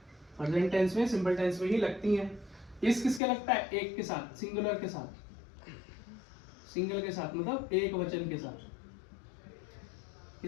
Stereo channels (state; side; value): drops out; right; at 3.2 s